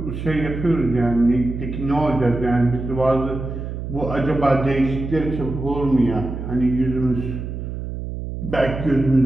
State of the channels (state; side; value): noise; right; hum, 6 dB below the sound